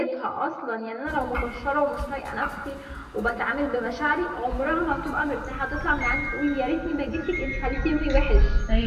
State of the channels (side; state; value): both; identical; correlation 1.00